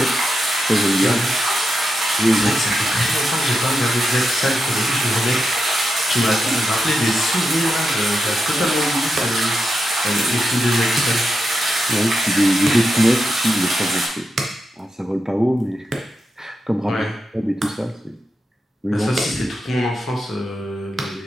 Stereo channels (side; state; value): both; normal; correlation 0.87